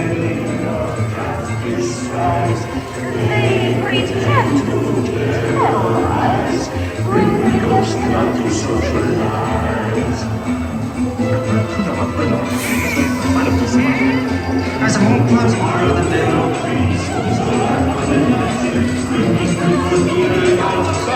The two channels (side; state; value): both; identical; correlation 1.00